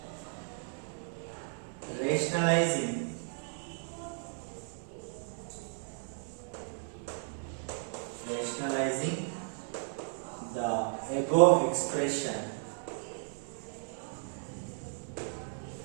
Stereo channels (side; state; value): left; silent; 55 dB below the other